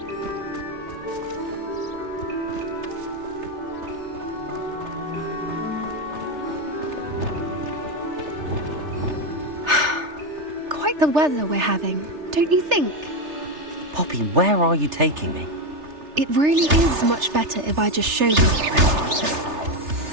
Quite the weather we're having, don't you think? Poppy, where are you taking me? It really is much better if I just show you.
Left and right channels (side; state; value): left; late; 3.3 ms